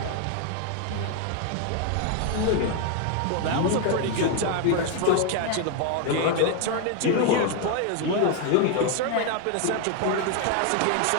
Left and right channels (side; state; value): both; different; correlation 0.01